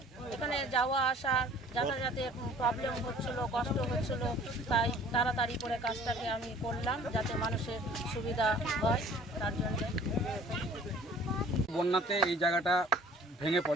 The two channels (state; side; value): normal; both; correlation 0.52